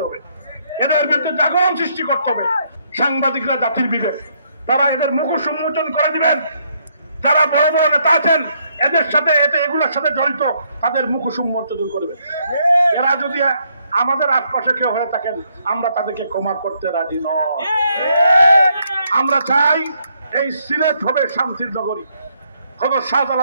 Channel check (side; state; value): both; inverted; correlation -0.72